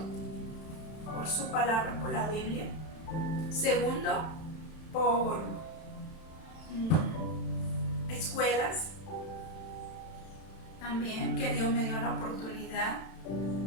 Por su palabra, por la Biblia. Segundo, por escuelas también, que Dios me dio la oportunidad.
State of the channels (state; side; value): late; right; 31 ms